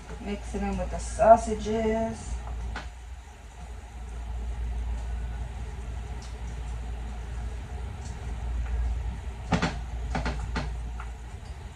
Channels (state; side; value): identical; both; correlation 1.00